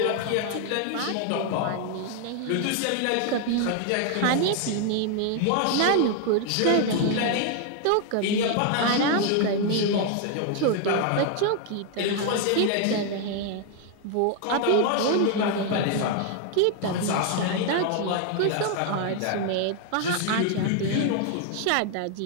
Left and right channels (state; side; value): different; both; correlation 0.00